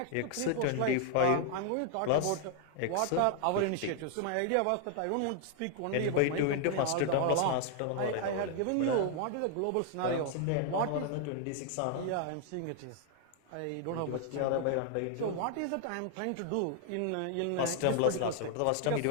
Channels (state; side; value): different; both; correlation 0.00